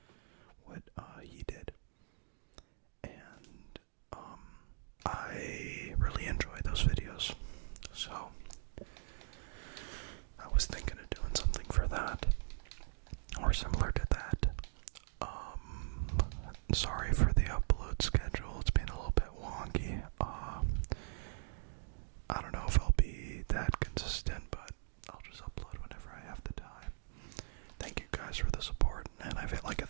what he did. And I really enjoy those videos. So I was thinking of doing something for that, or similar to that. Sorry for the upload schedule, it's been a little bit wonky. I don't know if I'll be that consistent, but I'll just upload whenever I have the time. Thank you guys for the support, and I've hit like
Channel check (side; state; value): left; silent; digital silence